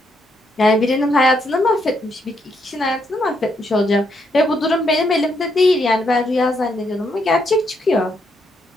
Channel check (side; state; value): both; normal; correlation 0.76